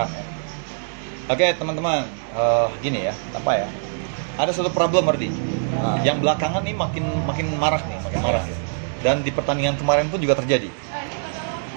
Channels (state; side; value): silent; left; digital silence